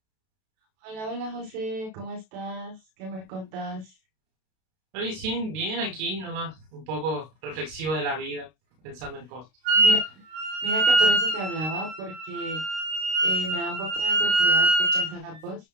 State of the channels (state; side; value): late; left; 32 ms